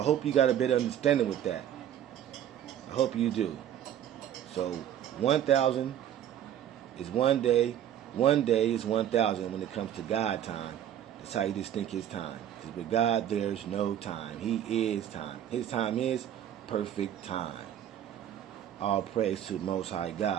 hope you got a better understanding with that. I hope you do. So 1,000 is one day. One day is 1,000 when it comes to God time. That's how you distinct his time. Because with God, there's no time. He is time. His time is perfect time. All praise to the Most High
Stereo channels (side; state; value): left; quieter; 10.6 dB